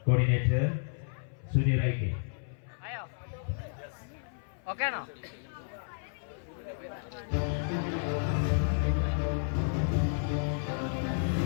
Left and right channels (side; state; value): right; silent; 56 dB below the other